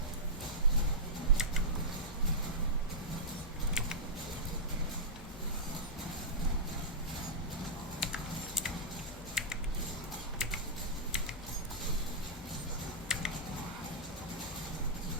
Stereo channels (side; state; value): both; normal; correlation -0.12